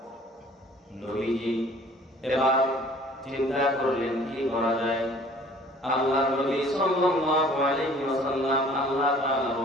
নবীজি এবার চিন্তা করলেন কি করা যায়। আল্লাহ নবী সাল্লাল্লাহু আলাইহি ওয়াসাল্লাম আল্লাহ তাআলার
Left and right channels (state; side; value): normal; both; correlation 0.52